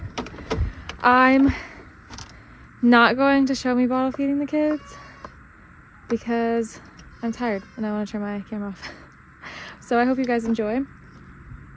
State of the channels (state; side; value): identical; both; correlation 1.00